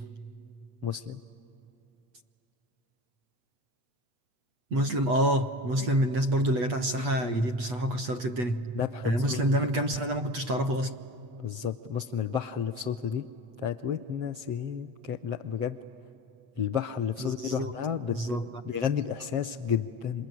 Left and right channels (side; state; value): left; late; 8.2 ms